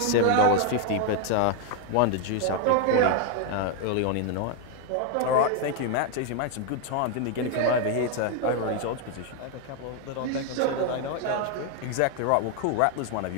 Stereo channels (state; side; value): different; both; correlation 0.01